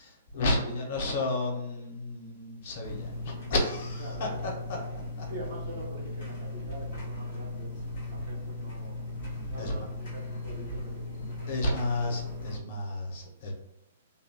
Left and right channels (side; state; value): both; inverted; correlation -0.60